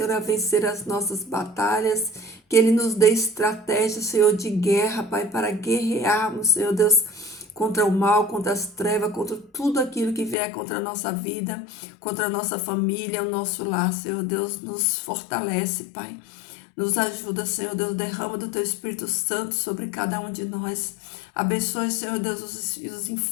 a vencer as nossas batalhas, que Ele nos dê estratégia, Senhor, de guerra, Pai, para guerrearmos, Senhor Deus, contra o mal, contra as trevas, contra tudo aquilo que vier contra a nossa vida, contra a nossa família, o nosso lar, Senhor Deus, nos fortalece, Pai. Nos ajuda, Senhor Deus, derrama do Teu Espírito Santo sobre cada um de nós. Abençoe, Senhor Deus, os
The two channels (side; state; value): right; drops out; at 10.4 s